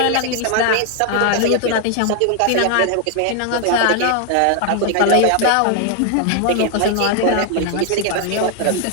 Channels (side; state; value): both; different; correlation 0.00